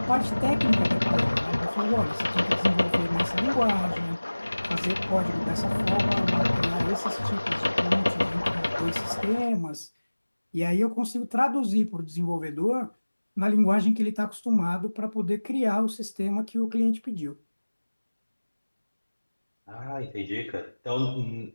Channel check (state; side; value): inverted; both; correlation -1.00